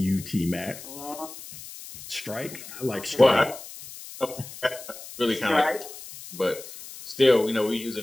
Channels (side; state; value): left; noise; hiss, 14 dB below the sound